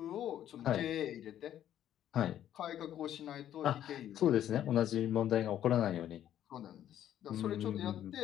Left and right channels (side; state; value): right; quieter; 11.2 dB